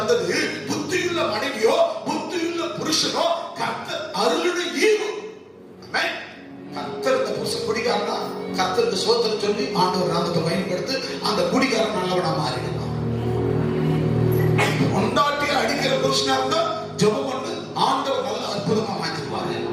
புத்தியுள்ள மனைவியோ புத்தியுள்ள புருஷனோ கர்த்தர் அருளுடைய ஈவு. கர்த்தர் இந்த புருஷன் குடிகாரனா, கர்த்தருக்கு சோத்திரம் சொல்லி ஆண்டவர் நாமத்தை பயன்படுத்தி அந்த குடிகாரன் நல்லவனா மாறிடுவான். கொண்டாட்டிய அடிக்கிற புருஷனா இருந்தா ஜெபம் பண்ணி ஆண்டவர் நல்ல அற்புதமா மாற்றிடுவாரு.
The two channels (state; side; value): identical; both; correlation 1.00